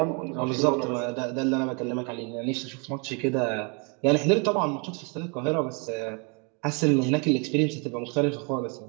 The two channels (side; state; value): left; quieter; 34.5 dB